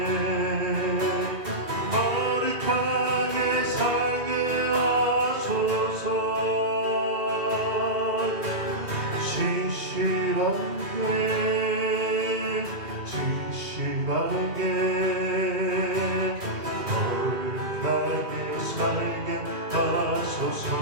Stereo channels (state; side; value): late; left; 1.9 ms